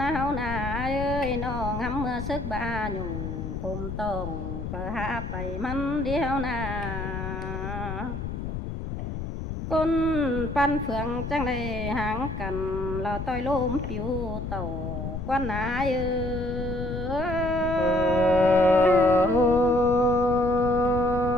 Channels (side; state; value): left; noise; rumble, 5 dB below the sound